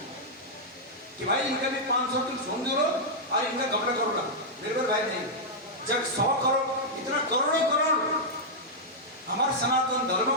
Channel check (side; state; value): both; normal; correlation -0.06